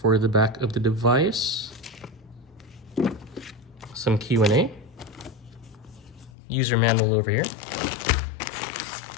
the back of the device, some Q&A, user manual over here.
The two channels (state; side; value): drops out; right; at 6.3 s